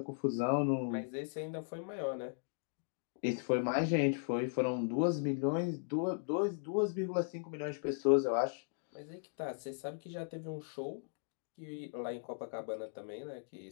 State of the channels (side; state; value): right; silent; digital silence